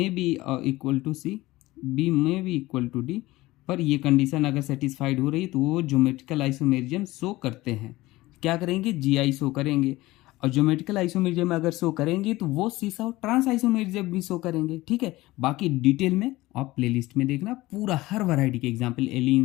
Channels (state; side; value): quieter; right; 18.8 dB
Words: B equal to C, B में भी इक्वल टू डी, पर ये कंडीशन अगर सेटिस्फाइड हो रही तो वो ज्योमेट्रिकल आइसोमेरिज्म शो करते हैं, क्या करेंगे, जीआई शो करेंगे। और ज्योमेट्रिकल आइसोमेरिज्म अगर शो करेंगे तो वो सिस और ट्रांस आइसोमेरिज्म भी शो करेंगे, ठीक है। बाकी डिटेल में आप प्लेलिस्ट में देखना, पूरा हर वैरायटी के एग्जांपल,